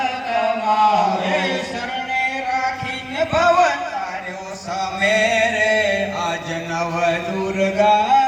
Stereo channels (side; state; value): both; identical; correlation 1.00